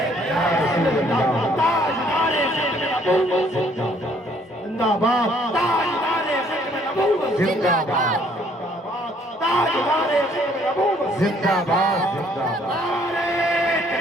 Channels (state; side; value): normal; both; correlation 0.63